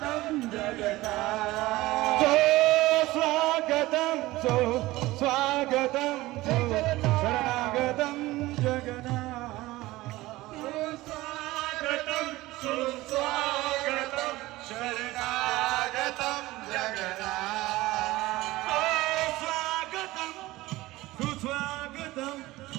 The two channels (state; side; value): quieter; left; 18.6 dB